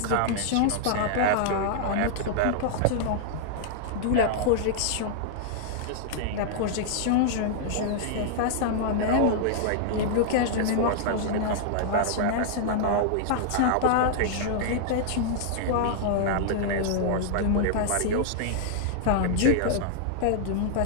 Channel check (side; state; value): both; different; correlation -0.01